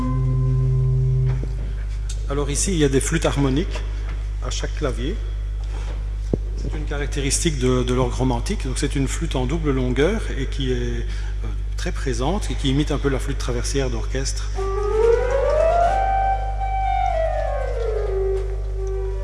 Alors ici, il y a des flûtes harmoniques à chaque clavier. C'est une caractéristique de l'orgue romantique. Donc c'est une flûte en double longueur et qui est très présente et qui imite un peu la flûte traversière d'orchestre.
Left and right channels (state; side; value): identical; both; correlation 1.00